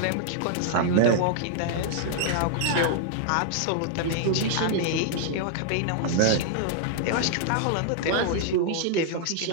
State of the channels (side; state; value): both; different; correlation -0.01